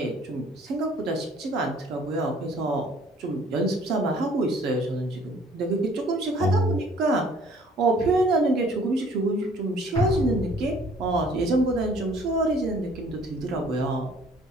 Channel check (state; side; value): normal; both; correlation 0.56